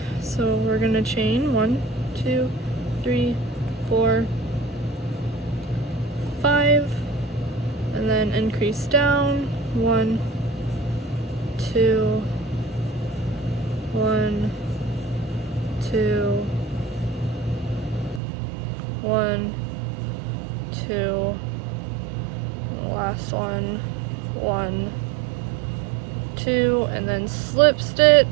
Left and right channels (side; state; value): left; drops out; at 18.2 s